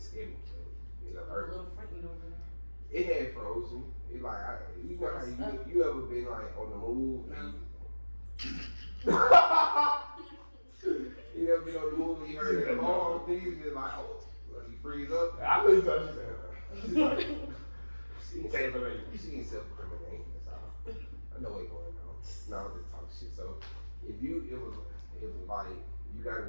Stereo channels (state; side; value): inverted; both; correlation -1.00